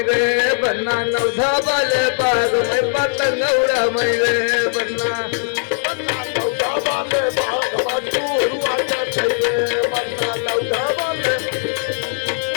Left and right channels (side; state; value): right; silent; 67 dB below the other